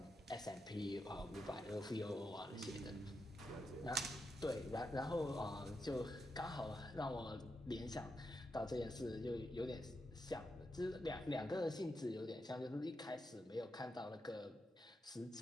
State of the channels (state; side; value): normal; both; correlation 0.85